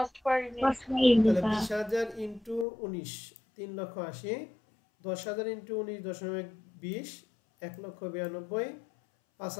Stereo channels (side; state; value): right; drops out; at 2.7 s